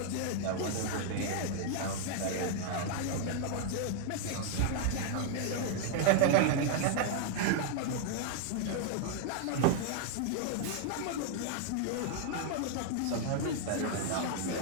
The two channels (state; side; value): different; both; correlation 0.00